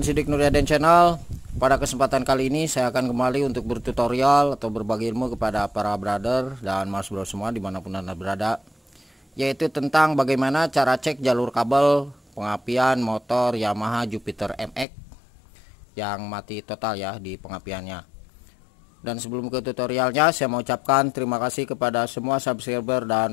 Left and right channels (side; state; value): right; drops out; at 14.9 s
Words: Nuryaden Channel. Pada kesempatan kali ini saya akan kembali untuk bertutorial atau berbagi ilmu kepada para brother dan mas bro semua dimanapun anda berada, yaitu tentang bagaimana cara cek jalur kabel pengapian motor Yamaha Jupiter MX yang mati total ya di pengapiannya. Dan sebelum ke tutorialnya, saya mau ucapkan terima kasih kepada semua subscriber